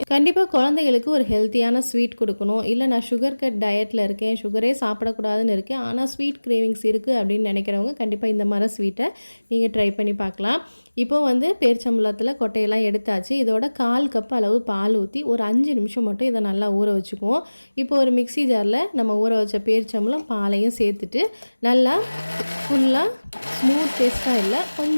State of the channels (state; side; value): inverted; both; correlation -1.00